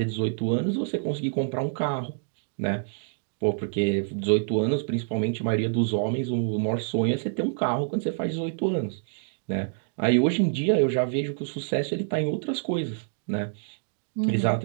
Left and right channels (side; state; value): left; silent; digital silence